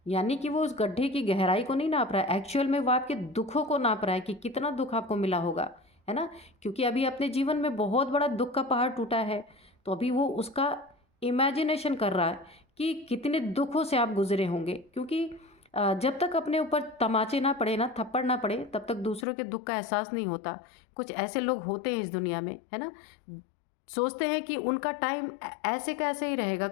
यानी कि वो उस गड्ढे की गहराई को नहीं नाप रहा है, एक्चुअल में वो आपके दुखों को नाप रहा है कि कितना दुख आपको मिला होगा, है ना। क्योंकि अभी अपने जीवन में बहुत बड़ा दुख का पहाड़ टूटा है, तो अभी वो उसका इमेजिनेशन कर रहा है कि कितने दुखों से आप गुजरे होंगे। क्योंकि जब तक अपने ऊपर तमाचे ना पड़े ना, थप्पड़ ना पड़े, तब तक दूसरों के दुख का एहसास नहीं होता। कुछ ऐसे लोग होते हैं इस दुनिया में, है ना, सोचते हैं कि उनका टाइम ऐसे का ऐसे ही रहेगा,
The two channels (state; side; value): drops out; right; at 19.2 s